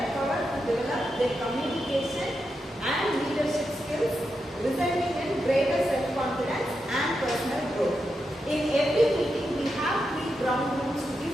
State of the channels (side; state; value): both; normal; correlation 0.86